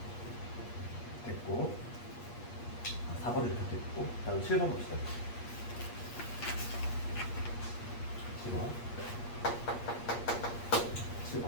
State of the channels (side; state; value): right; late; 8.4 ms